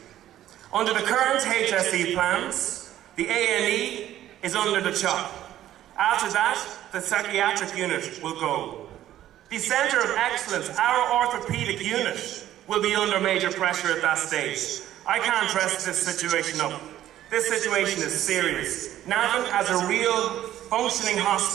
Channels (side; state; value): left; quieter; 12.7 dB